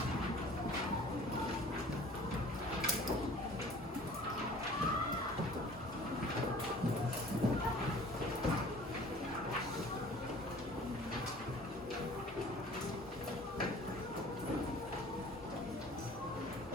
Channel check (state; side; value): normal; both; correlation 0.48